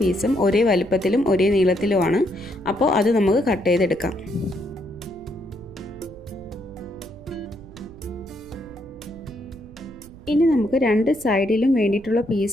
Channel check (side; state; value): right; noise; rumble, 19 dB below the sound